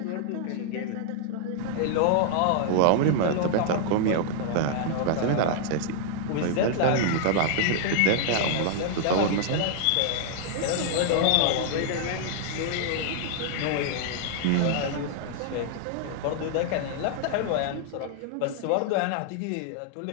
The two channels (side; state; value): both; different; correlation -0.01